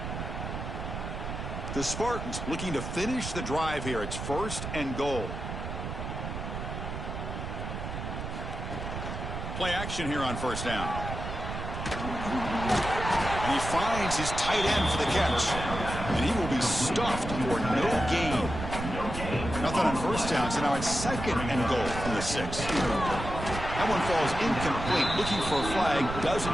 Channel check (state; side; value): noise; right; rumble, 6 dB below the sound